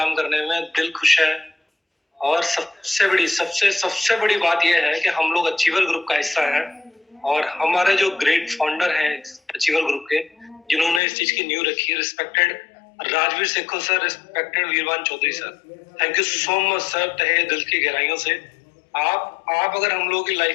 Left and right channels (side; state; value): right; drops out; at 11.0 s